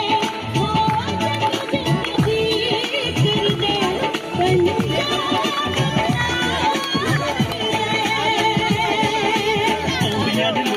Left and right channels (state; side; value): identical; both; correlation 1.00